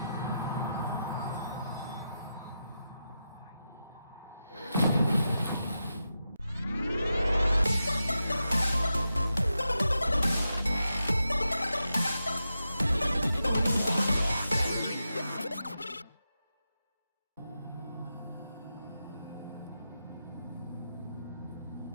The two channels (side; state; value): both; inverted; correlation -0.88